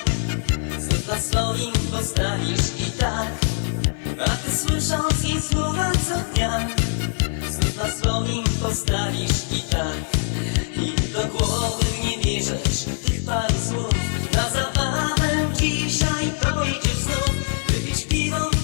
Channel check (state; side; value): silent; right; 64 dB below the other